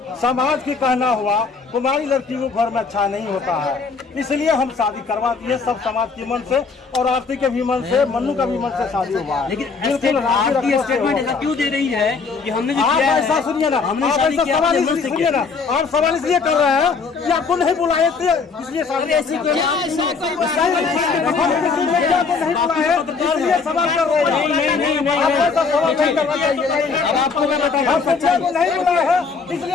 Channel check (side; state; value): right; quieter; 4.8 dB